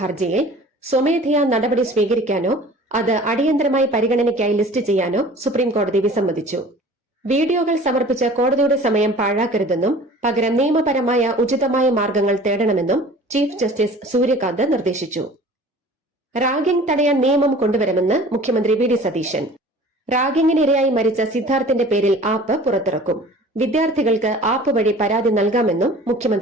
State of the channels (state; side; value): normal; both; correlation 0.45